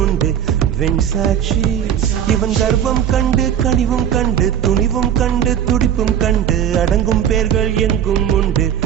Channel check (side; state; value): left; quieter; 9.6 dB